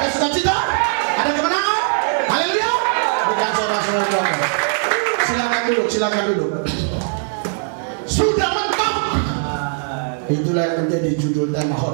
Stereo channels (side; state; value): left; silent; digital silence